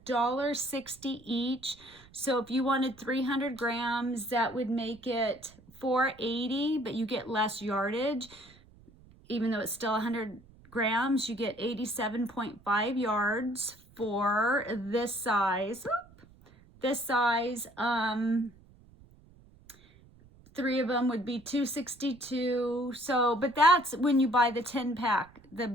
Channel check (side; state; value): right; noise; rumble, 25 dB below the sound